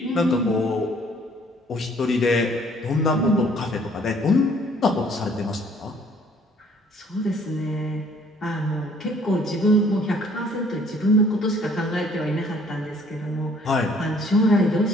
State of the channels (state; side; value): normal; both; correlation 0.59